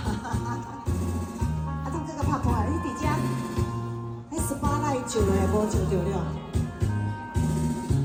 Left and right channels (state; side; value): identical; both; correlation 1.00